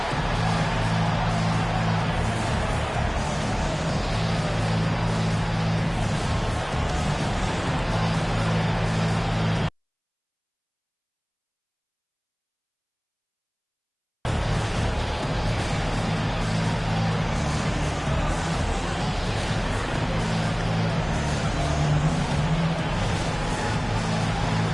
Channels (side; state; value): both; identical; correlation 1.00